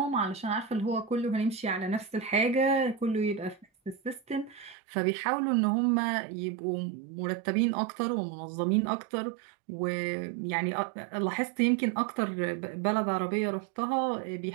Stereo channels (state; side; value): drops out; left; at 4.8 s